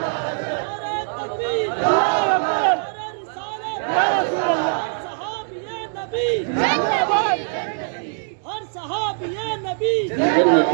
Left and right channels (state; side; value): silent; left; digital silence